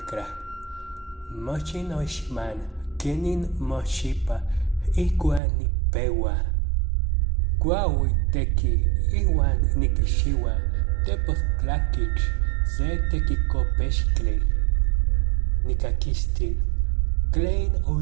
Mochi noixman kenin moxipa ikuan nipewa. Kuaui teki iwan nikishiwa tepoztlakich se tekikopextli. Nikakistil tlen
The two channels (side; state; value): left; drops out; at 5.4 s